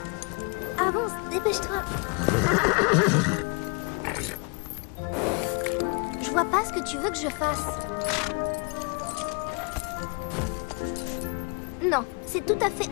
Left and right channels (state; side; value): quieter; right; 34.2 dB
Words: Avance, dépêche-toi. Je vois pas ce que tu veux que je fasse. Non, c'est tout à fait